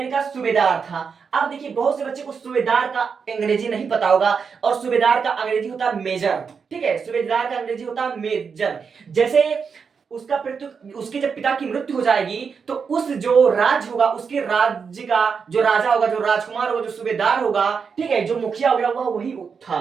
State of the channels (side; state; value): left; quieter; 5.9 dB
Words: का सूबेदार था। अब देखिए, बहुत से बच्चे को सूबेदार का अंग्रेजी नहीं पता होगा, और सूबेदार का अंग्रेजी होता है मेजर। ठीक है, सूबेदार का अंग्रेजी होता है मेजर। जैसे उसका उसके जब पिता की मृत्यु हो जाएगी, तो उस जो राज्य होगा, उसके राज्य का जो राजा होगा, जो राजकुमार होगा, जो सूबेदार होगा, ठीक है, जो मुखिया होगा, वह वही